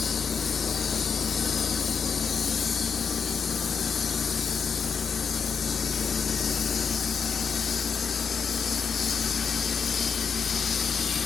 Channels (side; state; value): right; quieter; 6.2 dB